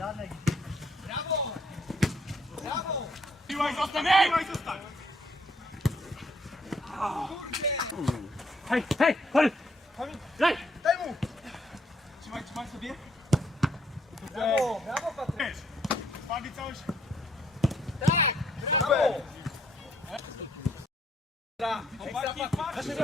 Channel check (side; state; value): both; normal; correlation 0.69